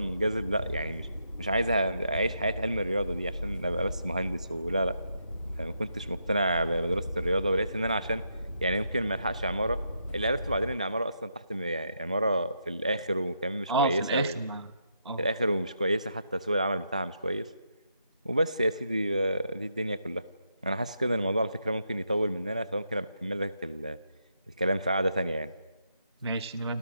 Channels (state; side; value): inverted; both; correlation -0.80